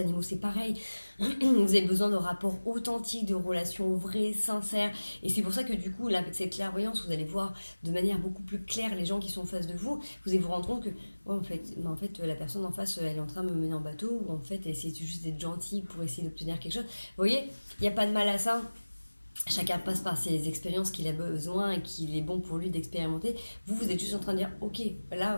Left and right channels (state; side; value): inverted; both; correlation -1.00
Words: c'est pareil. Vous avez besoin de rapports authentiques, de relations vraies, sincères. Et c'est pour ça que du coup, là, avec cette clairvoyance, vous allez voir de manière beaucoup plus claire les gens qui sont en face de vous. Vous allez vous rendre compte que ouais, en fait, la personne en face, elle est en train de me mener en bateau, ou en fait, elle essaie juste d'être gentille pour essayer d'obtenir quelque chose. Vous voyez, il n'y a pas de mal à ça. Chacun passe par ses expériences qu'il a besoin et qu'il est bon pour lui d'expérimenter. Vous êtes juste en train de dire, ok,